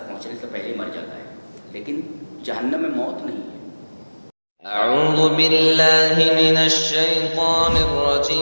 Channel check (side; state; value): both; inverted; correlation -1.00